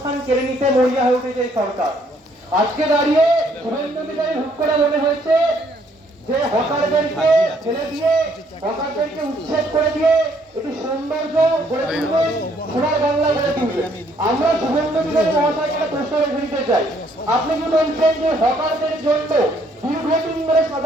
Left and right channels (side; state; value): both; normal; correlation 0.66